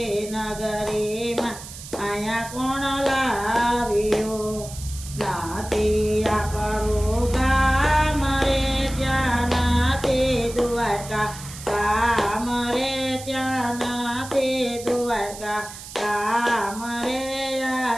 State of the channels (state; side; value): noise; right; hiss, 13 dB below the sound